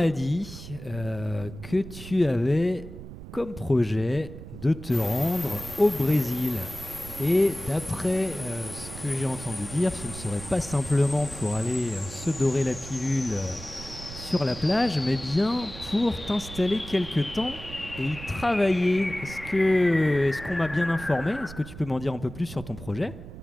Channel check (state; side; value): noise; right; rumble, 13 dB below the sound